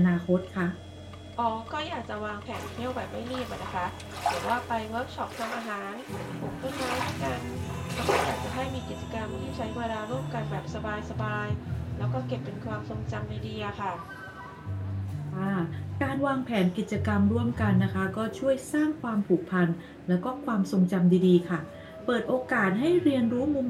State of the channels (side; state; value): both; identical; correlation 1.00